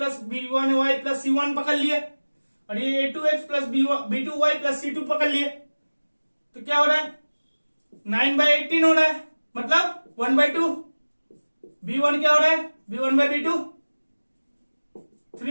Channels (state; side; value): inverted; both; correlation -1.00